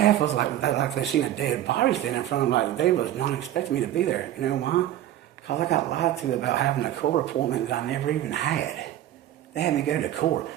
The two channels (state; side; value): quieter; left; 12.6 dB